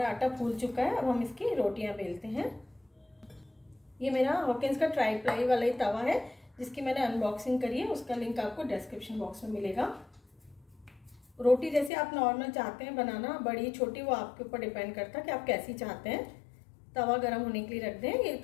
आटा फूल चुका है, अब हम इसकी रोटियां बेलते हैं। ये मेरा हॉकिंस का ट्राई प्लाई वाला ही तवा है जिसकी मैंने अनबॉक्सिंग करी है, उसका लिंक आपको डिस्क्रिप्शन बॉक्स में मिलेगा। रोटी जैसे आप नॉर्मल चाहते हैं बनाना, बड़ी छोटी, वो आपके ऊपर डिपेंड करता है कि आप कैसी चाहते हैं। तवा गर्म होने के लिए रख दें। ये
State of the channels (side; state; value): right; drops out; at 11.9 s